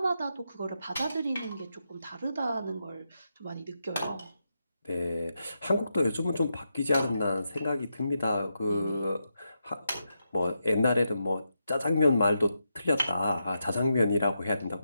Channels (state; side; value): inverted; both; correlation -0.85